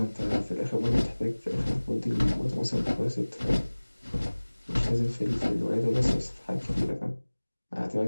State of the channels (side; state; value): both; inverted; correlation -1.00